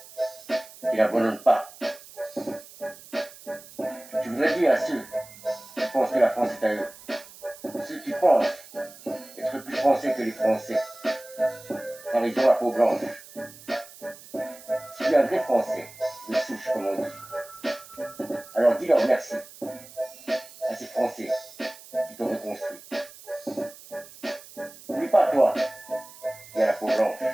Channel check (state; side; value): noise; right; hiss, 19 dB below the sound